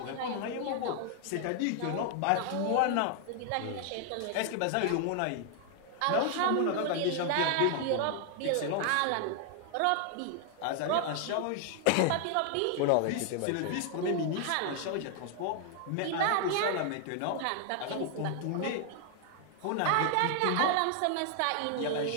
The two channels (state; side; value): different; both; correlation 0.00